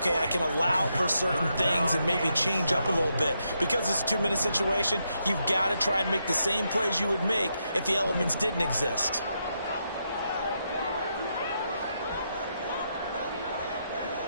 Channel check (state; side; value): inverted; both; correlation -0.81